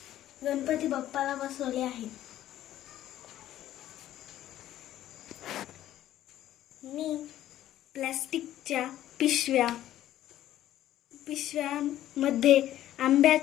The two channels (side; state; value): right; quieter; 13.0 dB